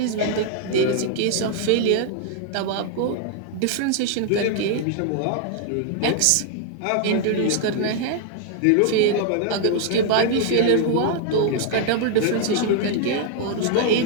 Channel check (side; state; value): both; different; correlation 0.00